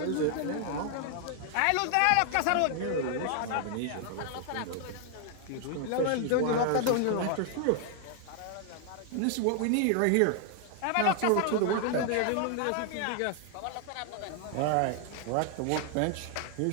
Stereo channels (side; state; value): both; different; correlation 0.00